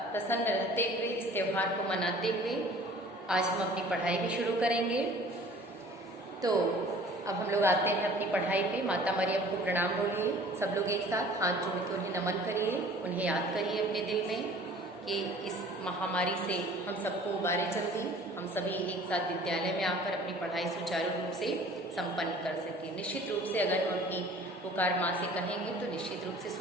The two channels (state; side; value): normal; both; correlation 0.49